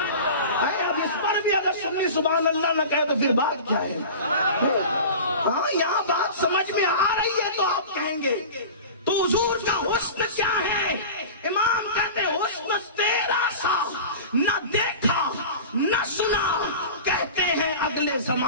اب اس پر بھی اگر سنی سبحان اللہ نہ کہے تو پھر بات کیا ہے؟ ہاں یہاں بات سمجھ میں آ رہی ہے تو آپ کہیں گے تو حضور کا حسن کیا ہے؟ امام کہتے ہیں حسن تیرا سا نہ دیکھا نہ سنا۔ کہتے ہیں اگلے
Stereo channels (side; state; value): both; inverted; correlation -0.34